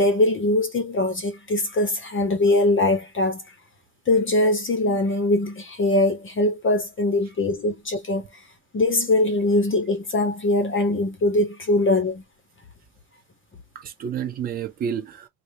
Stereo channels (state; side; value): normal; both; correlation 0.07